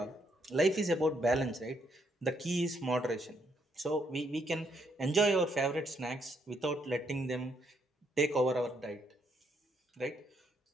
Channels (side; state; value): both; normal; correlation 0.74